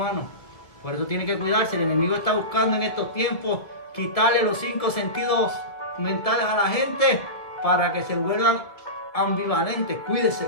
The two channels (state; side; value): late; right; 1.8 ms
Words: Por eso tiene que cuidarse. El enemigo está buscando en estos tiempos quitarle los 5 sentidos mentales a la gente para que se vuelvan ambivalentes. Cuídese,